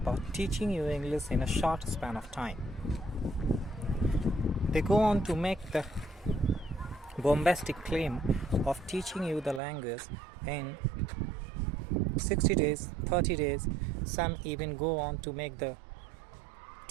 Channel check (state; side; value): drops out; left; at 9.6 s